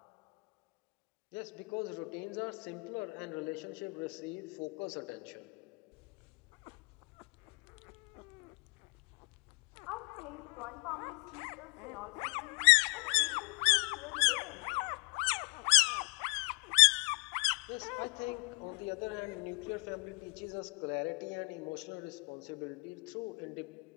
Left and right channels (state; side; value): quieter; right; 31.0 dB